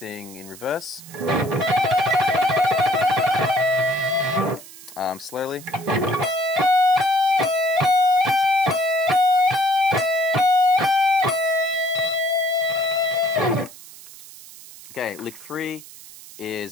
in reverse. Slowly. Okay, lick 3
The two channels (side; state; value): right; noise; hiss, 18 dB below the sound